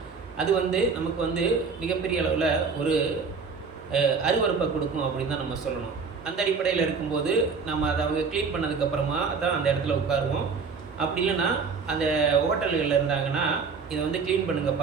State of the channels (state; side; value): quieter; left; 5.1 dB